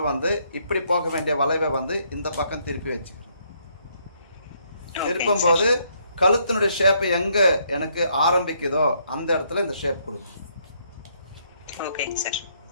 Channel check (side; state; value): both; inverted; correlation -0.71